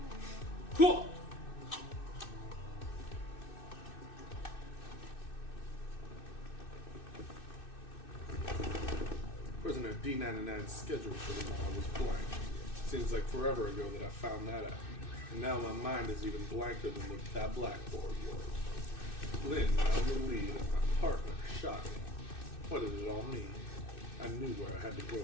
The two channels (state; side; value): late; right; 2.6 ms